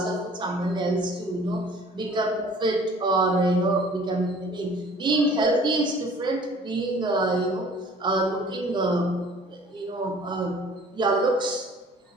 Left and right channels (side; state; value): both; normal; correlation 0.51